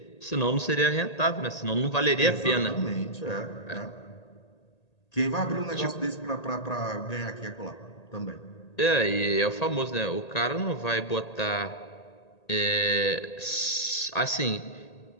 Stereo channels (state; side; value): late; right; 1.8 ms